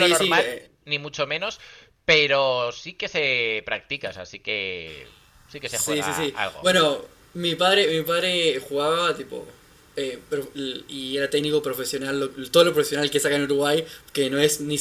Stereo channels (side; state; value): both; identical; correlation 1.00